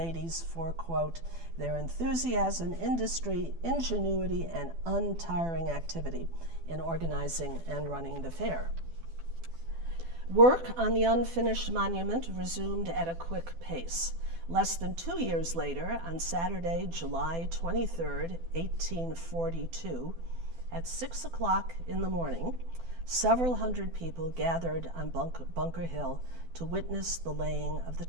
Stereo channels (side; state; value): left; late; 12 ms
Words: for, quote, their enthusiasm, industry, ingenuity, and untiring activity in organizing and running the fair. Work on the unfinished monument resumed at a quick pace. Less than 2 years later, on Saturday, July 23rd, 1842, At 6 o'clock in the morning, several hundred people gathered on Bunker Hill to witness the laying of the